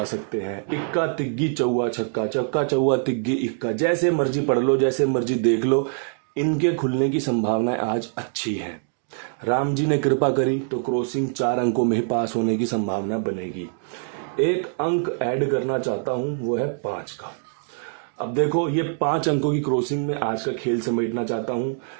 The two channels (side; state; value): left; silent; 63 dB below the other